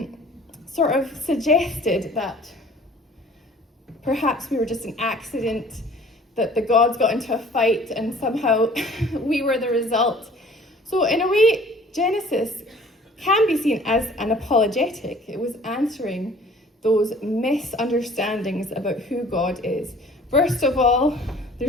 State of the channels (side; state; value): both; normal; correlation 0.51